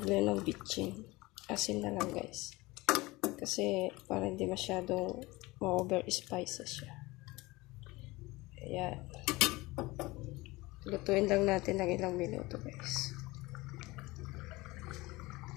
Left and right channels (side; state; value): right; quieter; 21.3 dB